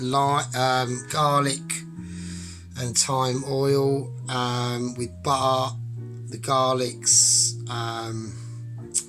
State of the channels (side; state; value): both; identical; correlation 1.00